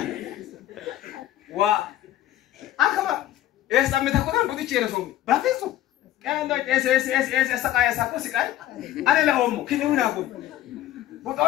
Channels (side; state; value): right; quieter; 13.6 dB